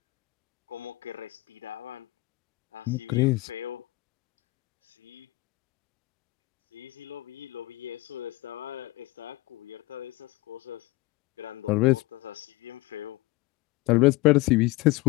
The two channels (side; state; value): right; quieter; 20.6 dB